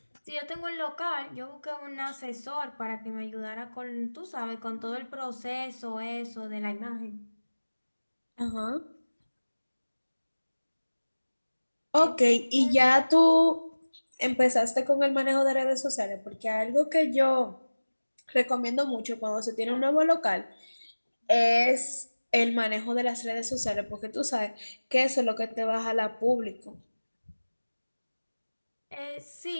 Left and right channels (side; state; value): both; inverted; correlation -1.00